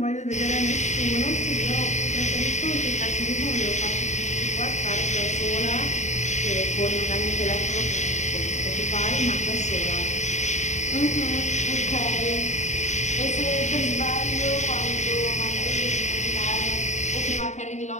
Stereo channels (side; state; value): right; late; 0.34 ms